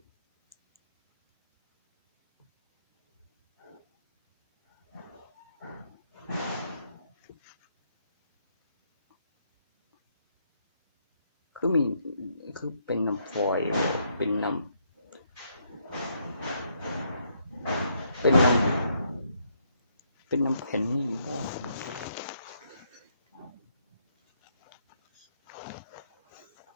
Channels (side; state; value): both; inverted; correlation -0.73